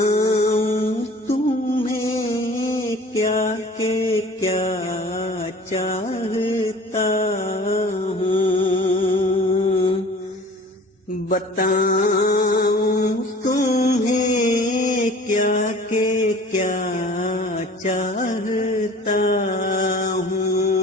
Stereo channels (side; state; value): both; normal; correlation 0.45